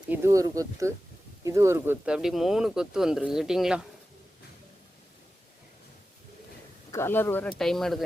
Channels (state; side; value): normal; both; correlation 0.94